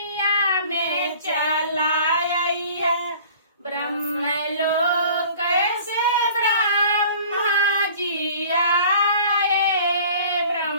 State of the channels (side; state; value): both; inverted; correlation -0.47